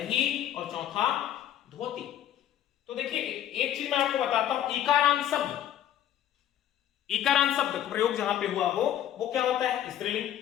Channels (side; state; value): right; quieter; 11.3 dB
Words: और चौथा धोती। तो देखिए, एक चीज मैं आपको बताता हूं, इकारांत शब्द, इकारांत शब्द प्रयोग जहां पे हुआ हो वो क्या होता है? स्त्रीलिंग।